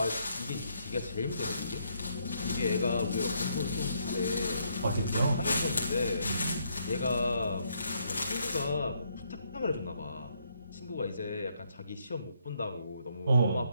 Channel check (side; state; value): both; inverted; correlation -0.73